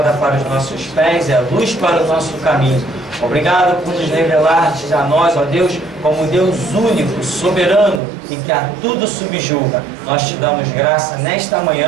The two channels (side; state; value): left; drops out; at 8.0 s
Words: para os nossos pés e a luz para o nosso caminho. Obrigado por nos revelar-te a nós, ó Deus, como Deus único, soberano e que a tudo subjuga. Nós te damos graça nesta